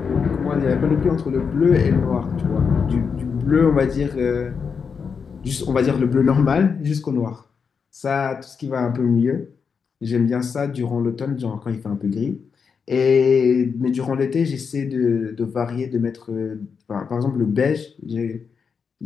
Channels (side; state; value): right; quieter; 6.0 dB